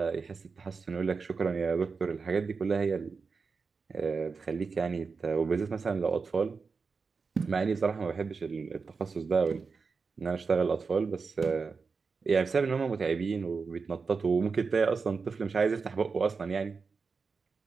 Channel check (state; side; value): quieter; left; 4.9 dB